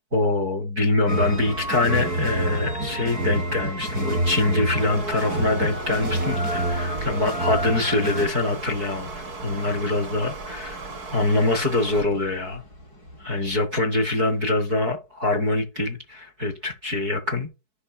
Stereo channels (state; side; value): late; left; 4.6 ms